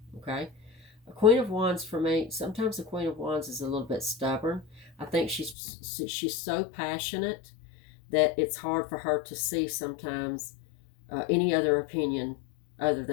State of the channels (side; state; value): right; drops out; at 5.6 s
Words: Okay. A Queen of Wands, for me, sometimes the Queen of Wands is a little bit stubborn. I think she's so passionate that it's hard for her to see sometimes any other opinion other